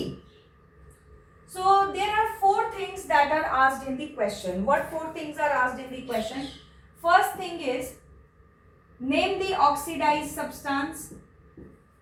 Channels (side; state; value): both; identical; correlation 1.00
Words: So there are 4 things that are asked in the question. What 4 things are asked in the question? First thing is, name the oxidized substance.